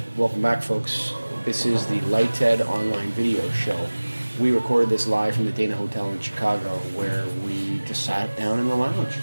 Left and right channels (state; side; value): inverted; both; correlation -1.00